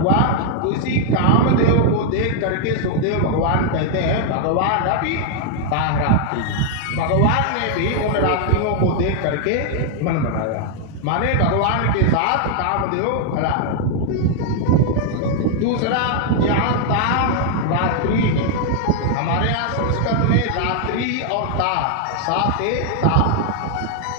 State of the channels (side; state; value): both; different; correlation 0.00